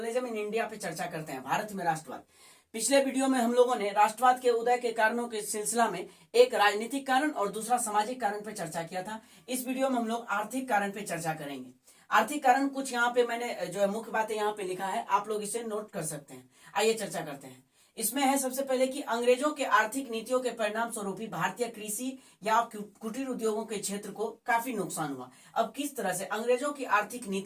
in India पे चर्चा करते हैं, भारत में राष्ट्रवाद। पिछले वीडियो में हम लोगों ने राष्ट्रवाद के उदय के कारणों के सिलसिला में एक राजनीतिक कारण और दूसरा सामाजिक कारण पे चर्चा किया था। इस वीडियो में हम लोग आर्थिक कारण पे चर्चा करेंगे। आर्थिक कारण कुछ यहाँ पे मैंने जो है मुख्य बातें यहाँ पे लिखा है, आप लोग इसे नोट कर सकते हैं। आइए चर्चा करते हैं। इसमें है सबसे पहले कि अंग्रेजों के आर्थिक नीतियों के परिणाम स्वरूप भारतीय कृषि या कुटीर उद्योगों के क्षेत्र को काफी नुकसान हुआ। अब किस तरह से अंग्रेजों की आर्थिक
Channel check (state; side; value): identical; both; correlation 1.00